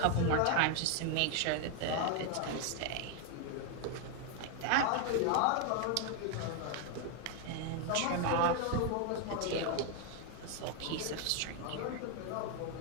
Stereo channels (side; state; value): both; different; correlation 0.01